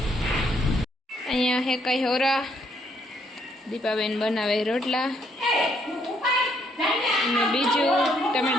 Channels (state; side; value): normal; both; correlation 0.71